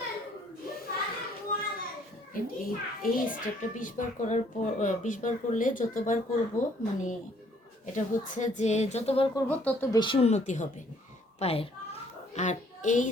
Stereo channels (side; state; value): both; normal; correlation 0.63